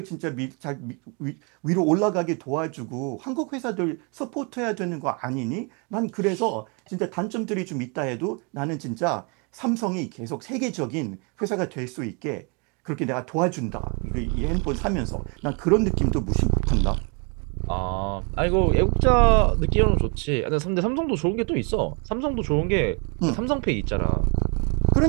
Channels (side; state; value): left; quieter; 35.2 dB